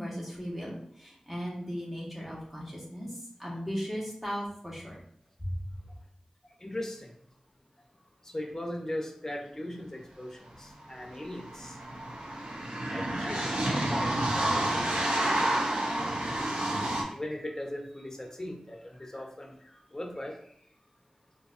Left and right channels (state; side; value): normal; both; correlation 0.89